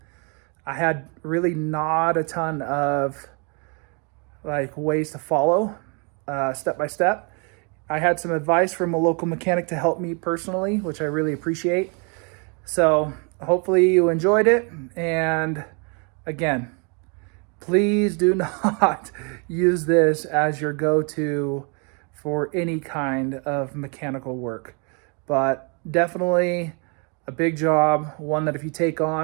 I had really not a ton of like ways to follow step by step. I had some advice from a local mechanic to help me personally, which I really appreciate. So hopefully you enjoyed it. And again, please do not use this as your go-to for any kind of mechanical work. But definitely a big job, one that if you take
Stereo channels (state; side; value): quieter; left; 35.3 dB